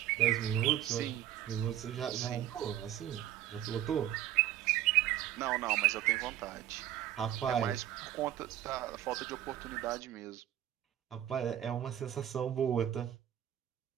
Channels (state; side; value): quieter; left; 12.1 dB